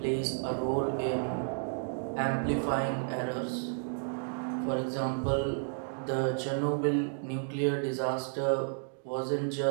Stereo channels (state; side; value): silent; left; digital silence